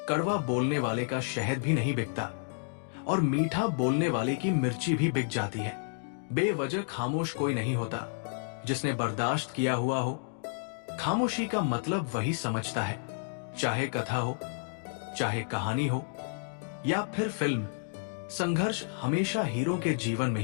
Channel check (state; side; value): silent; right; digital silence